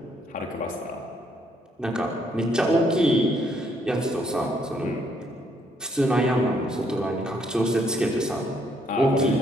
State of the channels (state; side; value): normal; both; correlation 0.71